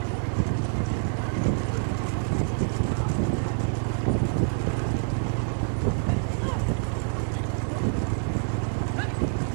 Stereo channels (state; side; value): silent; left; 60 dB below the other